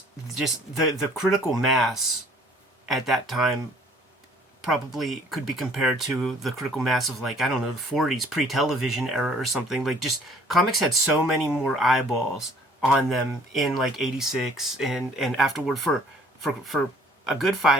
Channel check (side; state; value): both; normal; correlation 0.56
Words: just the critical mass at that time probably could be compared to the critical mass of, like, I don't know, the 40s, pre-television era or something. Like, just comics had so many more eyeballs on them in like 86 and afterward for a good